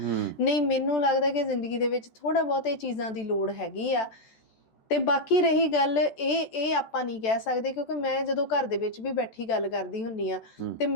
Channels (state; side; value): late; right; 14 ms